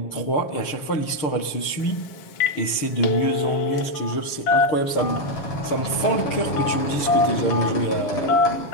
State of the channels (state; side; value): late; right; 6.6 ms